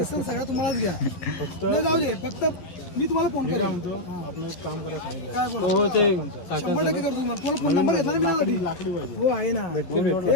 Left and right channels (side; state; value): right; late; 12 ms